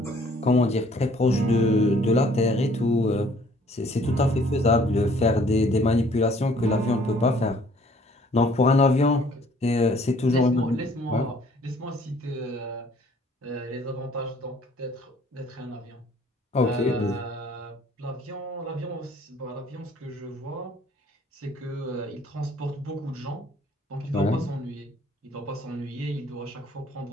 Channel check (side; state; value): both; normal; correlation 0.58